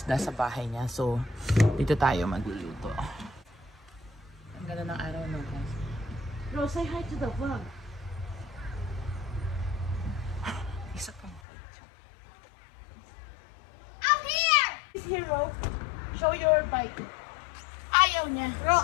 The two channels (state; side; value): drops out; right; at 11.4 s